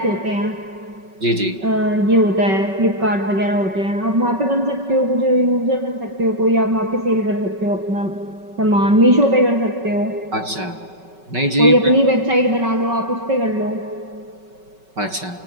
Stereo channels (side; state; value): left; late; 5.3 ms